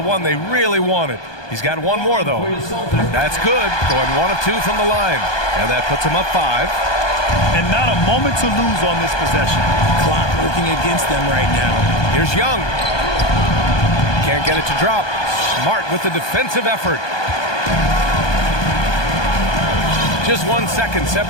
one they really wanted. He's got 1 more, though. That's good. Going 1 of 2 from the line. And that puts him up 5. And not a moment to lose on this possession. Clock working against them right now. Here's Young. Can't get it to drop. Smart with the defensive effort. Just 1 second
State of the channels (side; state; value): right; late; 1.2 ms